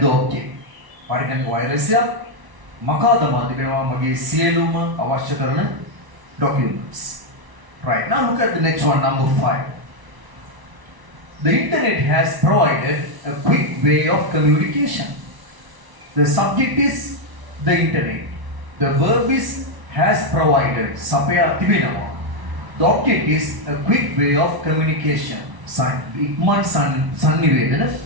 the object. Parikan virus ya makadama dibena mage sieluma avashya karana documents. Right. Now look at the next one, number 5. The internet has provided a quick way of communication. The subject is the internet. The verb is has provided. Sapaya Tibinawa. The object is a quick way of communication. Ikman Sannivedana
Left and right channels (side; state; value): left; late; 1.0 ms